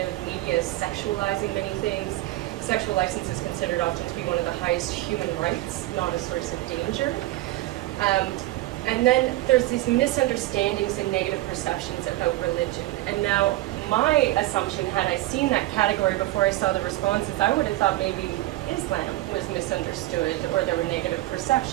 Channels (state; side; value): quieter; left; 17.4 dB